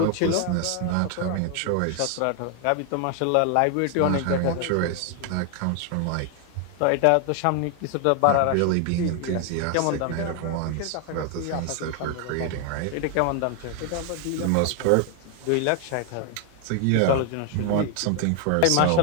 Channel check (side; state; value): both; different; correlation 0.01